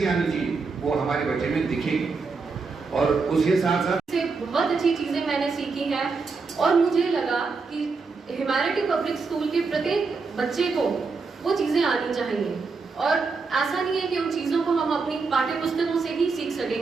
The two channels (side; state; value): left; quieter; 4.5 dB